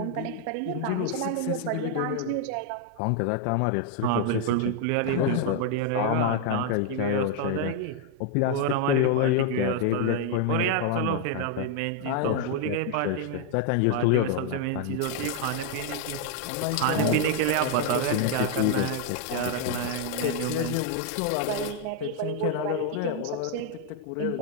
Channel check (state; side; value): different; both; correlation 0.00